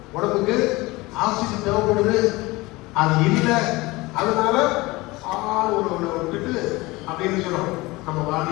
உடம்புக்கு ஆக்சிஜன் தேவைப்படுது, அது இல்லை, அதனால விட்டுட்டு அப்படின்னு சொல்றோம். நம்ம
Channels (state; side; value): quieter; right; 21.7 dB